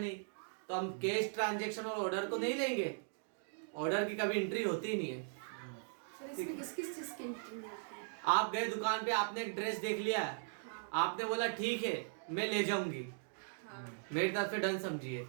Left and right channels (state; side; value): silent; left; digital silence